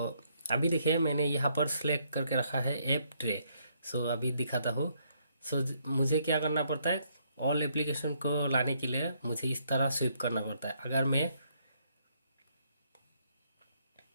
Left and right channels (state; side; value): inverted; both; correlation -0.71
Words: अभी देखिए मैंने यहाँ पर सेलेक्ट करके रखा है ऐप ट्रे। सो अभी दिखाता हूँ। सो मुझे क्या करना पड़ता है, ऑल एप्लीकेशन को लाने के लिए मुझे इस तरह स्विप करना पड़ता है। अगर मैं